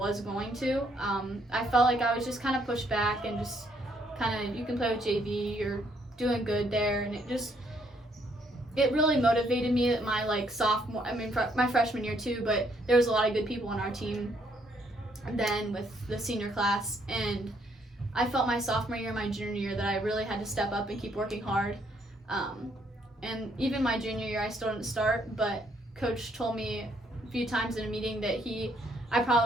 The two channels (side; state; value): both; normal; correlation 0.70